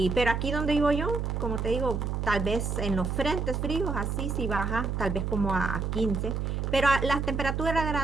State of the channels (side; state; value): right; noise; hum, 1 dB below the sound